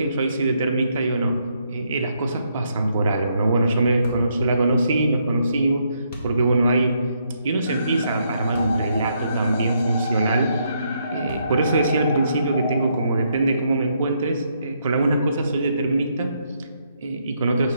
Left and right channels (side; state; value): both; inverted; correlation -0.75